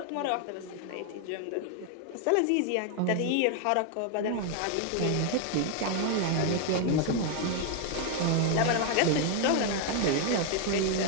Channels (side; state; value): both; different; correlation 0.00